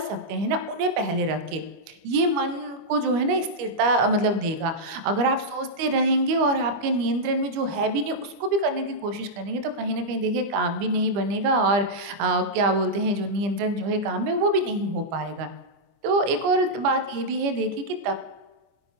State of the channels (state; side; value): late; left; 25 ms